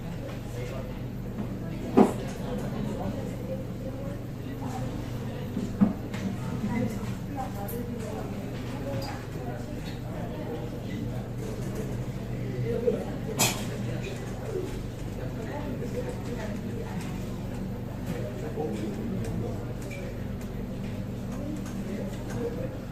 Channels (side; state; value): both; identical; correlation 1.00